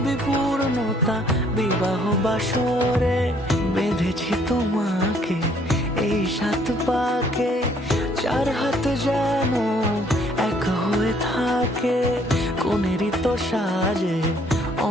পূর্ণতা বিবাহ বাসরে। বেঁধেছি তোমাকে এই 7 পাকে, 4 হাত যেন এক হয়ে থাকে। কোনেরই তো সাজে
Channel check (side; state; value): both; normal; correlation 0.63